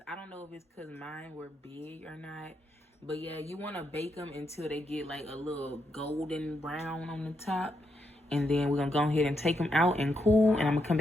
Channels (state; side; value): normal; both; correlation 0.81